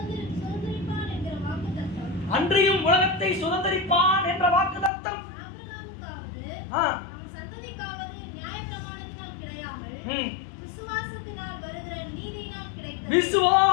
அன்றியும் உலகத்தை சுதந்தரிப்பான் என்ற வாக்குத்தத்தம்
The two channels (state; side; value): drops out; right; at 4.9 s